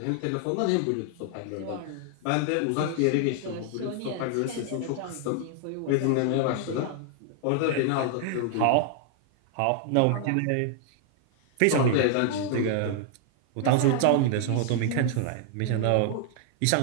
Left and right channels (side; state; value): both; different; correlation 0.00